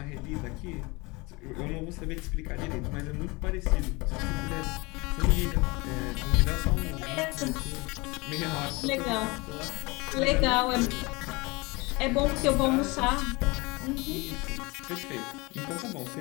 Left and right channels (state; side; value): quieter; right; 25.1 dB